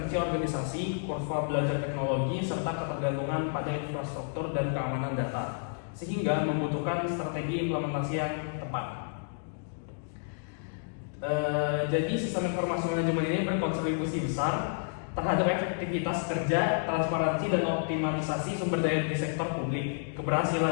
organisasi, kurva belajar teknologi, serta ketergantungan pada infrastruktur dan keamanan data, sehingga membutuhkan strategi implementasi yang tepat. Jadi sistem informasi manajemen ini berkontribusi besar terhadap efektivitas kerja, transparansi, dan optimalisasi sumber daya di sektor publik.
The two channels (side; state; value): right; silent; digital silence